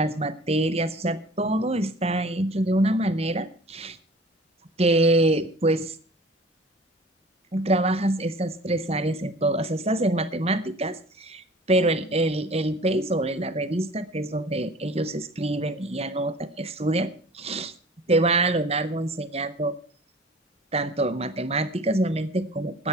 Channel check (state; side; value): normal; both; correlation 0.45